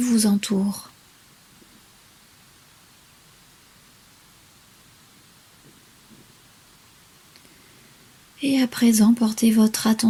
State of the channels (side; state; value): both; identical; correlation 1.00